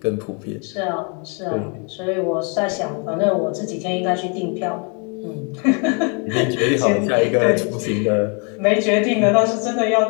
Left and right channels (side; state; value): right; quieter; 36.0 dB